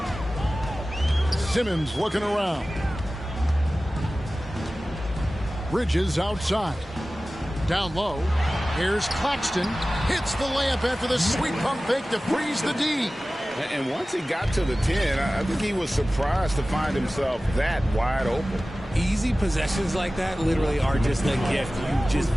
Simmons looking around. Bridges outside. Down low. Here's Claxton. Hits the layup after the sweet pump fake to freeze the D. And once he got to the 10, I think he was surprised to find himself that wide open. Easy possessions like that literally are just a gift. You just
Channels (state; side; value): normal; both; correlation 0.96